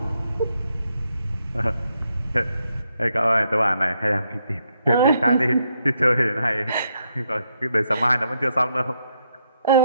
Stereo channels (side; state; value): both; inverted; correlation -0.78